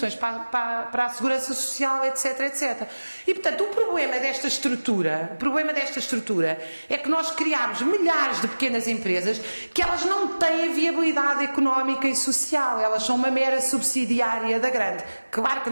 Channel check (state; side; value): inverted; both; correlation -1.00